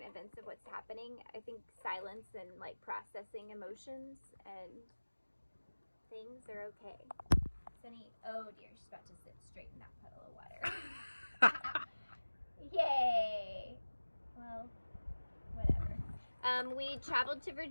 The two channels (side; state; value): both; inverted; correlation -1.00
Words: events of what's happening, I think silence and like processing emotions and things are okay. Sunny, oh dear, she's about to sit straight in that puddle of water. Yay! Well, whatever. We traveled to